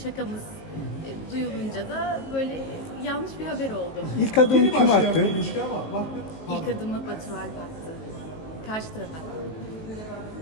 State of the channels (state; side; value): late; right; 19 ms